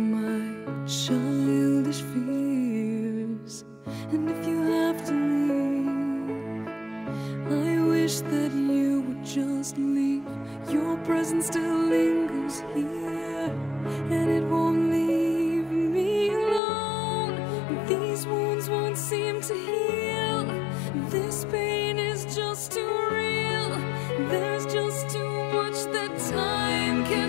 childish fears. And if you have to leave, I wish that you would just leave. Your presence still lingers here, and it won't leave me alone. These wounds won't seem to heal. This pain is just too real. There's just too much that time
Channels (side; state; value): right; drops out; at 16.6 s